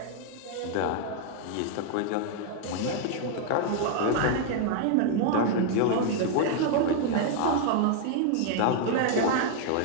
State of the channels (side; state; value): both; different; correlation 0.00